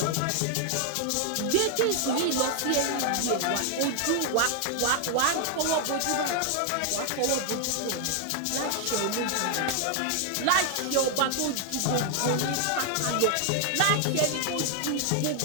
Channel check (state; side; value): different; both; correlation 0.00